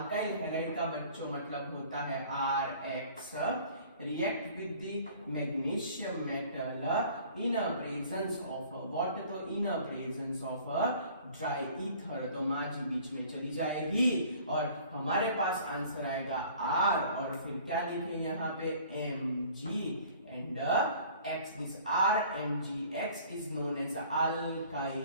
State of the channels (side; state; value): both; inverted; correlation -0.50